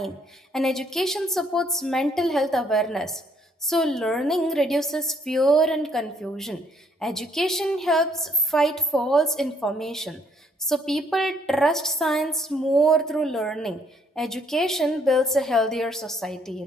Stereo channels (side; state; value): both; normal; correlation 0.66